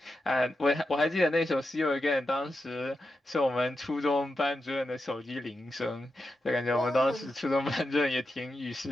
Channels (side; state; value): both; normal; correlation 0.88